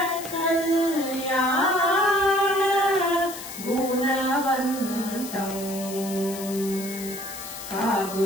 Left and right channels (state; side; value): noise; left; hiss, 11 dB below the sound